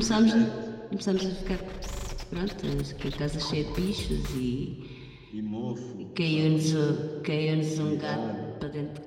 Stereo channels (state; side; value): identical; both; correlation 1.00